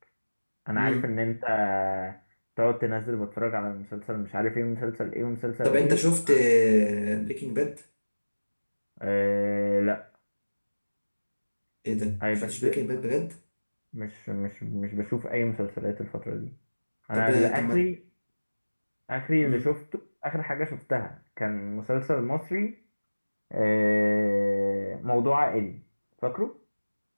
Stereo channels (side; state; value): both; inverted; correlation -1.00